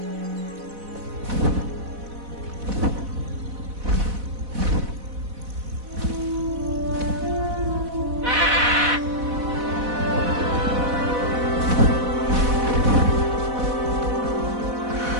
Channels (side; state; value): left; late; 4.1 ms